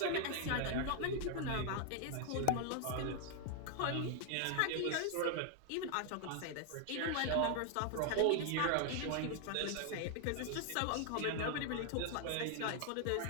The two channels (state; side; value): different; both; correlation 0.00